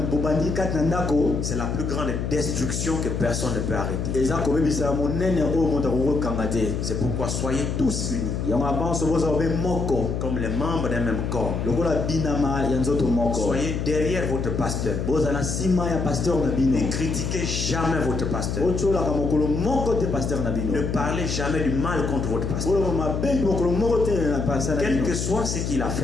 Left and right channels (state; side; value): noise; left; hum, 2 dB below the sound